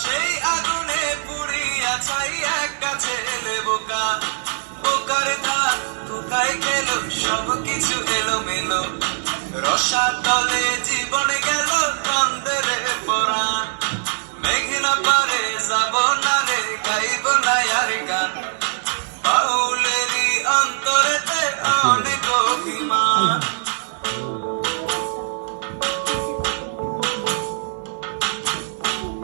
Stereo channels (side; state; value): left; silent; 57 dB below the other